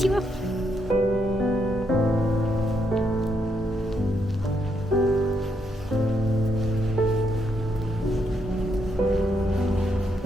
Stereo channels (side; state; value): both; normal; correlation 0.77